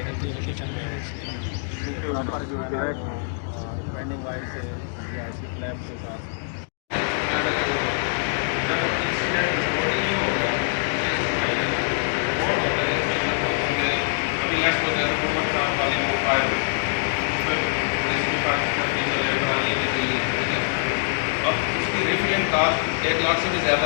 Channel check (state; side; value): silent; right; digital silence